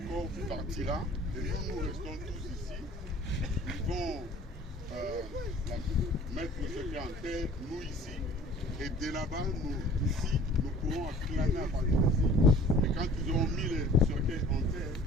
corps partira et nous restons tous ici. Ils vont mettre le secret en terre, nous ici. Et de là-bas, nous ici, nous pourrons acclamer à partir d'ici. Et quand ils auront mis le secret en terre,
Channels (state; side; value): normal; both; correlation 0.49